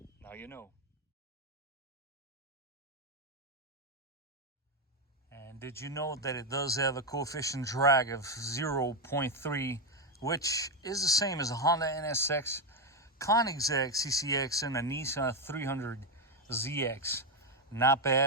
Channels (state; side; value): normal; both; correlation 0.07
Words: Now you know. And did you know that it does have a coefficient drag of 0.3, which is the same as a Honda NSX, Koenigsegg CCX, and a Nissan 300ZX? Not